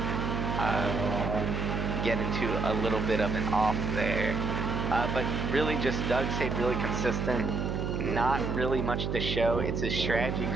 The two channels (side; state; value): right; noise; hum, 1 dB below the sound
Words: get into a little bit of an off there. But really just Doug stayed really consistent. Not really much to show. It's his strategy